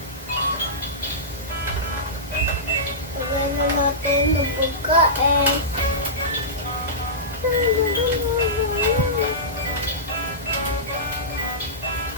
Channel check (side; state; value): both; normal; correlation -0.17